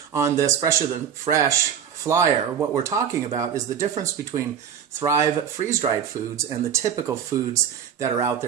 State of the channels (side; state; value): left; quieter; 8.3 dB